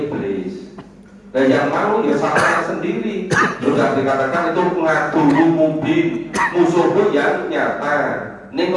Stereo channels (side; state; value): both; identical; correlation 1.00